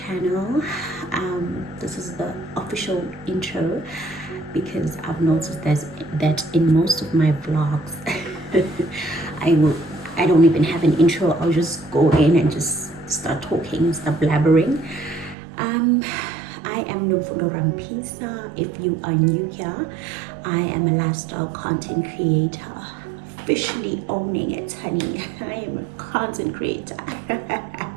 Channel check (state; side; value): drops out; left; at 15.4 s